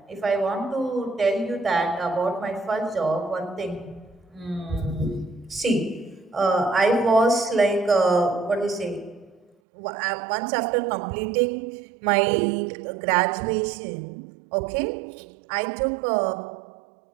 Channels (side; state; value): left; drops out; at 9.5 s